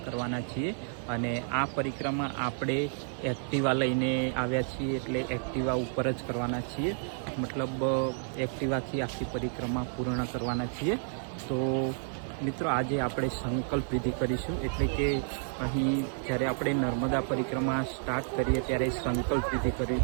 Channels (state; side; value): silent; left; 57 dB below the other